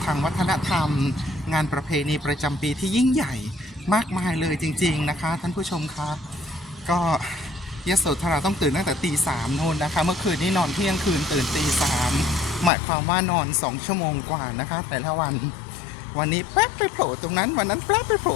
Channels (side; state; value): right; drops out; at 12.7 s